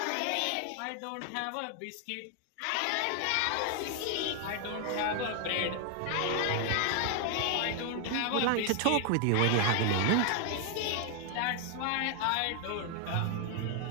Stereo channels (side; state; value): both; different; correlation 0.00